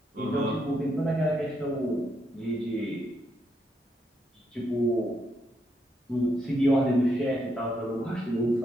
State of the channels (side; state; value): both; normal; correlation 0.78